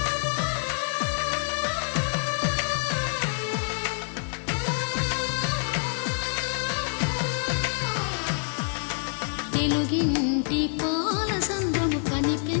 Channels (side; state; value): right; silent; 60 dB below the other